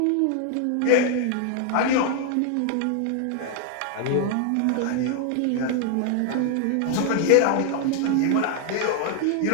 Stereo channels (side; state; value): both; different; correlation 0.00